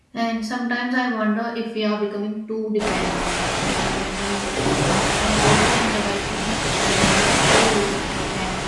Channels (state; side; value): identical; both; correlation 1.00